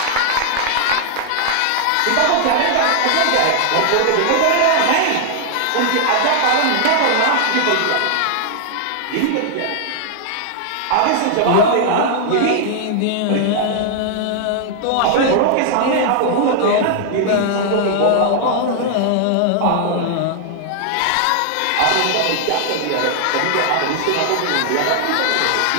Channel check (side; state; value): both; different; correlation 0.00